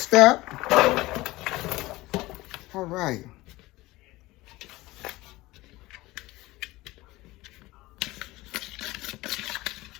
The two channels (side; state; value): right; quieter; 19.4 dB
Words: up. All right.